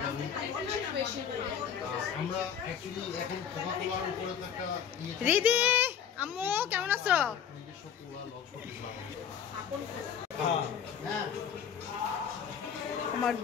রিদি আম্মু কেমন আছো? আমার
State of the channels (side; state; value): right; quieter; 8.1 dB